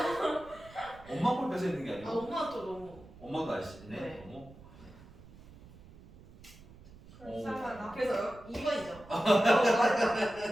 엄마 걸 뺏어 있는 게 아 아니고? 엄마 또 너무. 엄마도 날씬해? 네. 너무? 불쌍하다. 그래서 2번이죠. 맞아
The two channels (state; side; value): noise; right; rumble, 20 dB below the sound